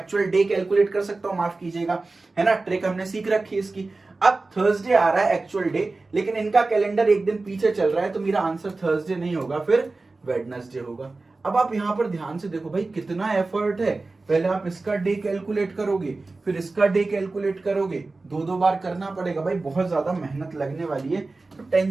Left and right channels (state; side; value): quieter; left; 3.5 dB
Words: डे कैलकुलेट कर सकता हूं, माफ कीजिएगा, है ना, ट्रिक हमने सीख रखी है इसकी। अब थर्सडे आ रहा है एक्चुअल डे, लेकिन इनका कैलेंडर एक दिन पीछे चल रहा है, तो मेरा आंसर थर्सडे नहीं होगा, फिर वेडनेसडे होगा। अब आप यहां पर ध्यान से देखो भाई कितना एफर्ट है, पहले आप इसका डे कैलकुलेट करोगे, फिर इसका डे कैलकुलेट करोगे, 2-2 बार करना पड़ेगा भाई, बहुत ज्यादा मेहनत लगने वाली है। तो